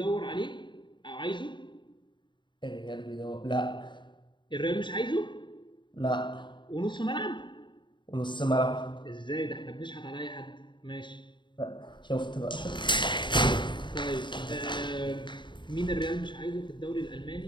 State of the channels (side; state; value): right; late; 0.23 ms